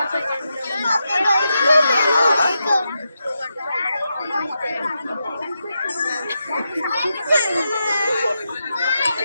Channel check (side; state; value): both; inverted; correlation -0.86